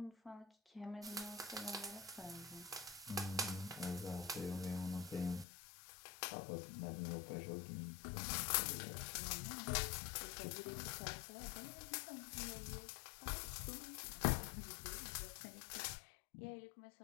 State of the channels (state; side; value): drops out; right; at 5.5 s